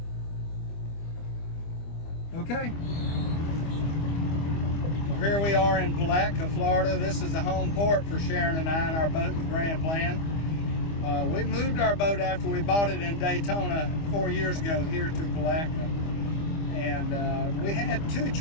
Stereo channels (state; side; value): late; right; 25 ms